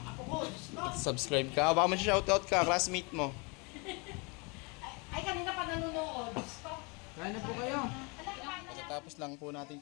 apo ko. Subscribe ka. Baka mag-shoutout ka, classmate mo. Ay, kanina pa nanonood. Kain na po kayo. Pagkatapos lang po natin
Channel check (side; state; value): right; quieter; 30.4 dB